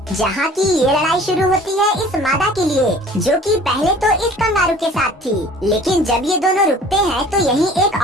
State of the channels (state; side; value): normal; both; correlation 0.48